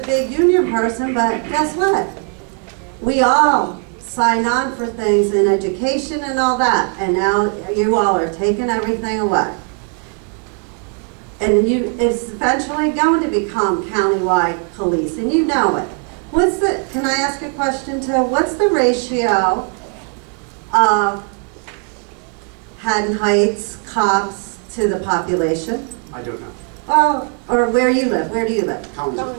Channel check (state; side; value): quieter; left; 38.5 dB